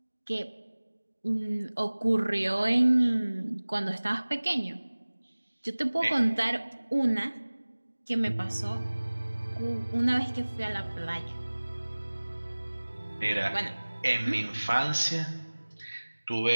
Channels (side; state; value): both; inverted; correlation -1.00